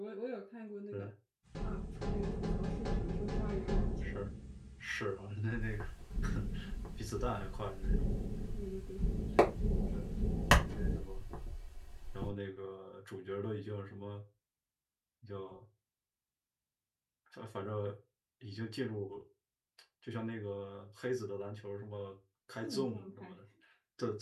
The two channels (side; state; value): both; identical; correlation 1.00